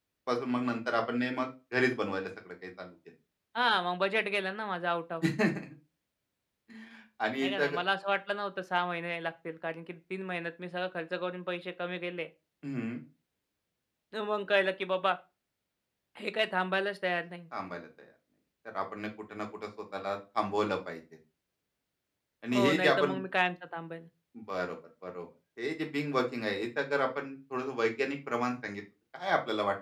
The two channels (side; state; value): both; identical; correlation 1.00